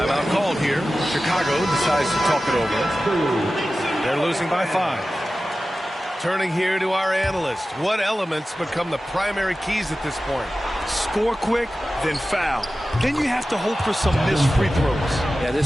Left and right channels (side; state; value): both; normal; correlation 0.95